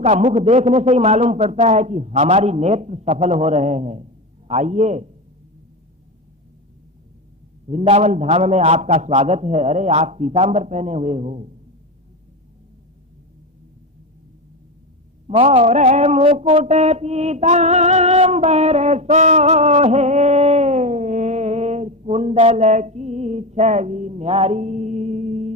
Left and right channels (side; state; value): both; normal; correlation 0.18